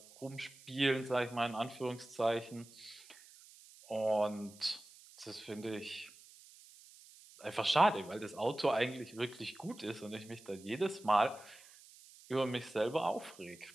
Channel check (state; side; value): noise; right; hiss, 21 dB below the sound